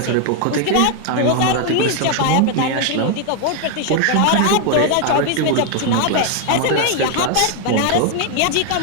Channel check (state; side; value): different; both; correlation 0.01